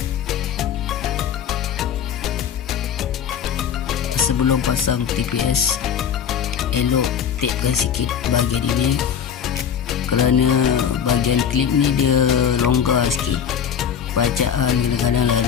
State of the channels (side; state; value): right; quieter; 8.1 dB